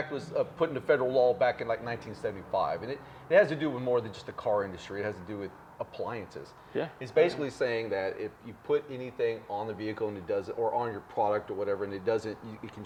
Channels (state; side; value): identical; both; correlation 1.00